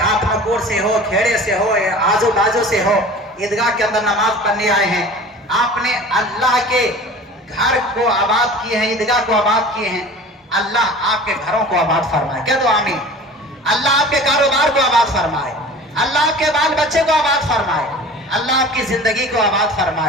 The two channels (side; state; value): both; normal; correlation 0.41